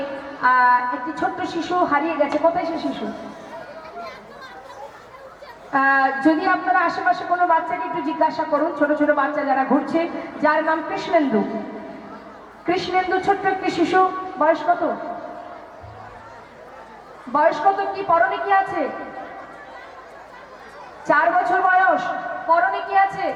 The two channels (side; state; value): both; identical; correlation 1.00